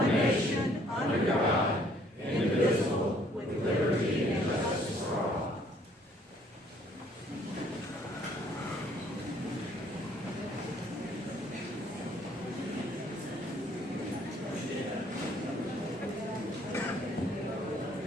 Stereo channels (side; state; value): both; normal; correlation 0.62